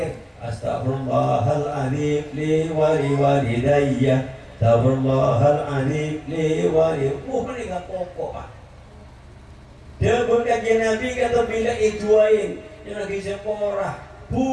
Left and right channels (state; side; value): identical; both; correlation 1.00